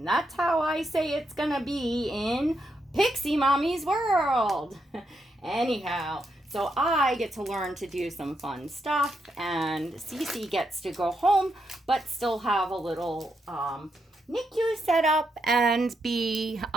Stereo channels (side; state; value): both; normal; correlation 0.81